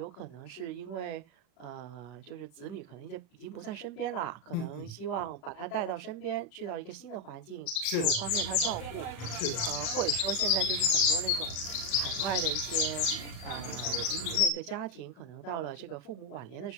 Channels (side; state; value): right; late; 36 ms